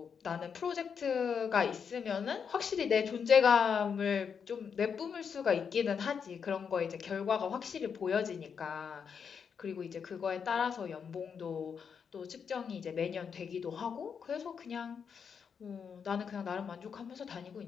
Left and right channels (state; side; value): quieter; right; 6.7 dB